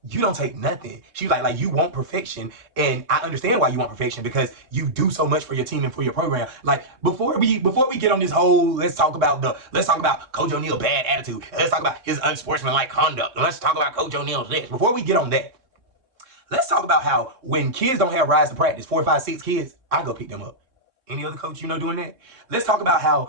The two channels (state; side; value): late; left; 3.6 ms